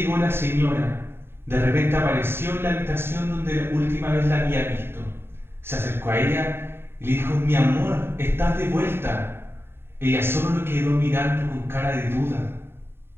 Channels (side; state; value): left; late; 0.11 ms